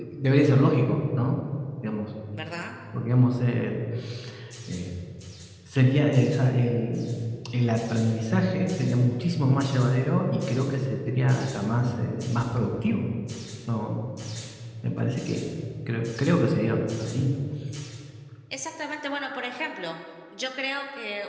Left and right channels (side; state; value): both; identical; correlation 1.00